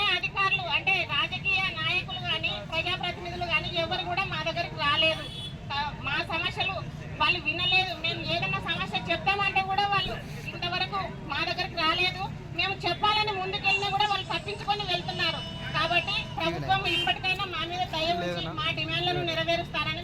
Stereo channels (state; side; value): identical; both; correlation 1.00